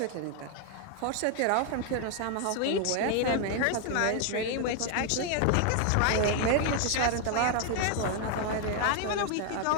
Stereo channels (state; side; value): different; both; correlation 0.00